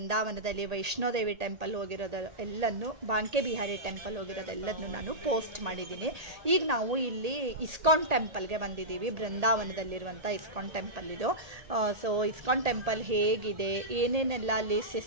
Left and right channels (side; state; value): left; late; 1.8 ms